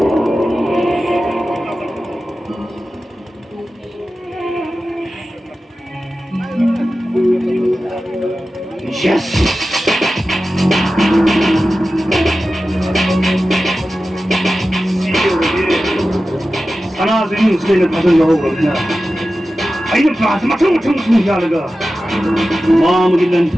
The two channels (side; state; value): both; normal; correlation 0.94